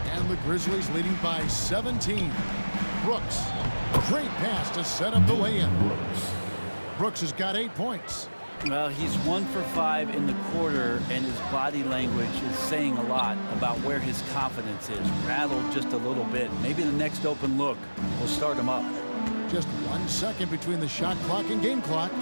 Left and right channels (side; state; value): both; inverted; correlation -1.00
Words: And the Grizzlies leading by 17. Brooks. Great pass to set up the lay-in. Brooks has got 8 points. Well, he's 1 for 5 in the quarter, and his body language is saying a lot about where his confidence is. Rattled just a little bit. Maybe the next open look will start him up. Just 1 second between the shot clock and game clock.